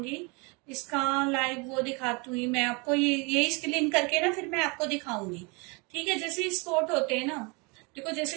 इसका लाइव वो दिखाती हुई मैं आपको, ये स्क्रीन करके ना फिर मैं आपको दिखाऊंगी, ठीक है। जैसे स्पॉट होते हैं ना, देखो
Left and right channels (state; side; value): quieter; left; 30.0 dB